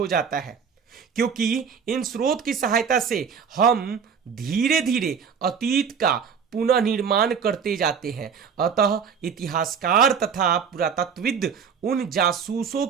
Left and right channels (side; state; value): left; quieter; 6.7 dB